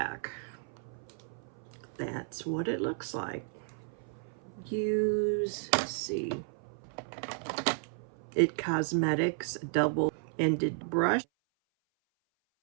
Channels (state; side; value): silent; left; 56 dB below the other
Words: That's what it looks like. Let's see. It Cosmetics double-ended brush.